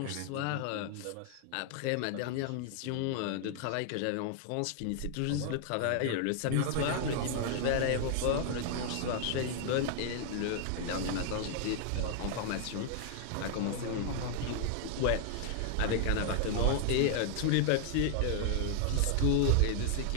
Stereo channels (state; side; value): different; both; correlation 0.00